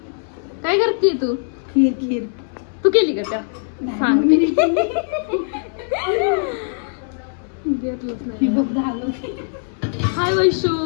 काय करते तू? खीर तू केली का त्या? सांगते. हाय वैशू,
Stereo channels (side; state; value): right; silent; 65 dB below the other